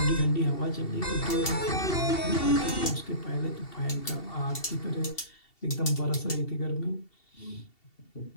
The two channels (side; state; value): right; late; 2.7 ms